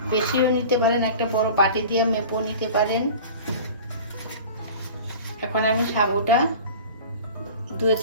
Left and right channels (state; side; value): inverted; both; correlation -0.39